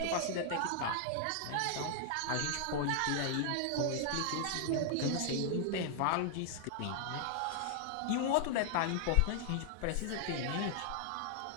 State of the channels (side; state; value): both; different; correlation 0.00